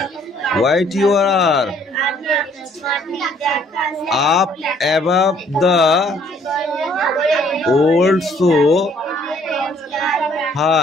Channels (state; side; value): normal; both; correlation 0.62